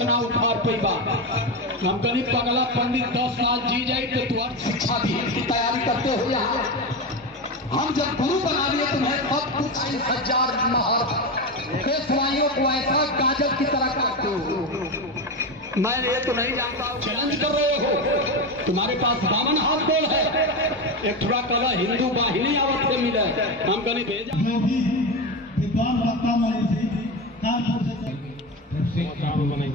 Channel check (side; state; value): both; normal; correlation 0.17